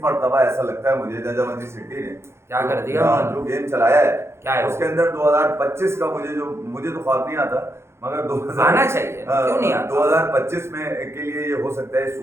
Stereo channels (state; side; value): late; left; 0.13 ms